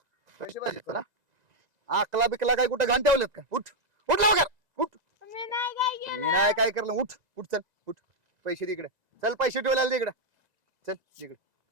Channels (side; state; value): left; late; 2.0 ms